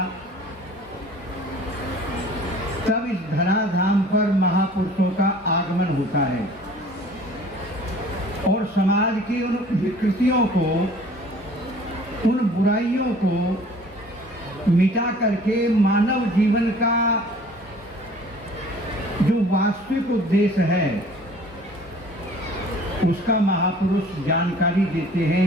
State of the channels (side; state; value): both; normal; correlation 0.50